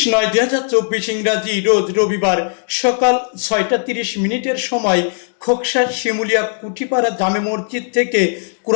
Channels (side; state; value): right; silent; digital silence